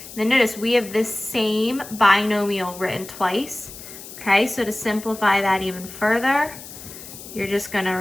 Then notice we have this same binomial written twice, okay? So to simplify that even further, you're just going to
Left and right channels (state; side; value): noise; left; hiss, 14 dB below the sound